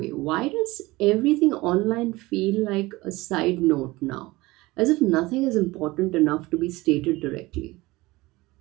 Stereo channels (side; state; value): left; quieter; 20.7 dB